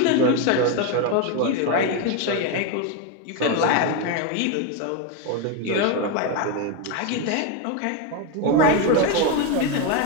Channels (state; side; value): different; both; correlation 0.02